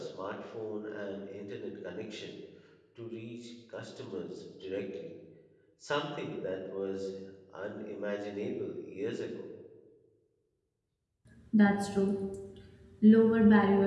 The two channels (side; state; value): both; identical; correlation 1.00